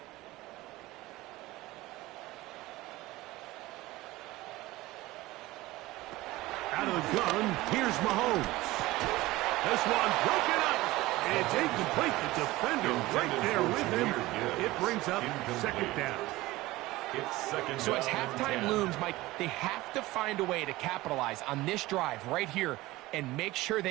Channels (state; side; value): quieter; left; 18.7 dB